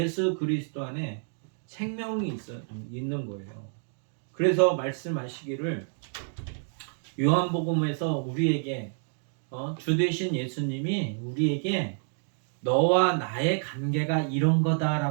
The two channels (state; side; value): silent; left; digital silence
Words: 그리스도 안에 생명이 있는 거예요. 그래서 말씀하시기를 요한복음에서 우리에게 주 되신 예수님이 우리에게 너와 나의 관계가 이런